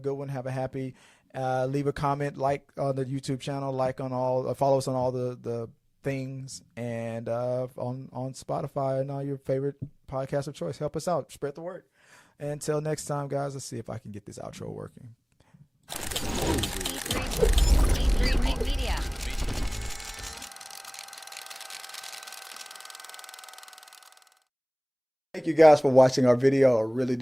one. Have a happy. Leave a comment, like on the YouTube channel, follow us on all the things, and on Spotify and all your favorite podcasts of choice. Help us out. Spread the word. And until next time, guys, let's see if I can get this outro working. Media. Thank you guys for watching our video. I really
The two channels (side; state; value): both; identical; correlation 1.00